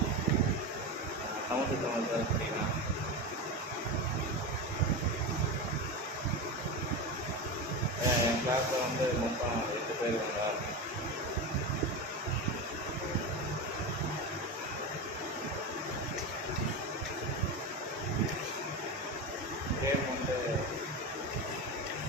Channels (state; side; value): normal; both; correlation 0.20